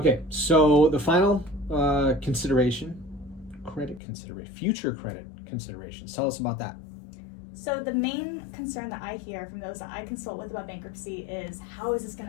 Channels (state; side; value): drops out; right; at 4.0 s